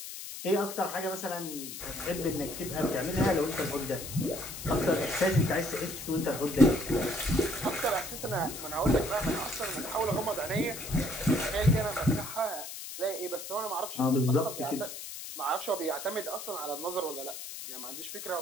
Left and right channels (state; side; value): noise; left; hiss, 9 dB below the sound